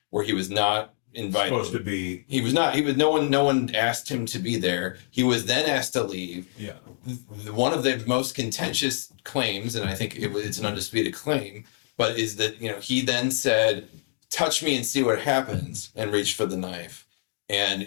where he was not invited. Supposed to be. No one asked him to be there. He was then asked to leave. Yeah. One of the most contentious claims, and I think it's an undisputed claim, but is that, he then said, touch me and see what happens, and reached for the knife. And,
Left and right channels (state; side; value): silent; right; digital silence